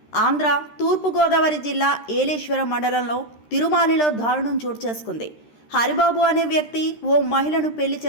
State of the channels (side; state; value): right; late; 13 ms